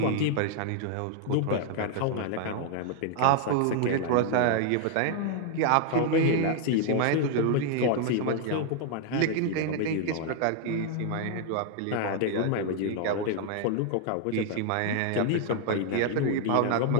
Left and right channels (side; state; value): both; different; correlation 0.00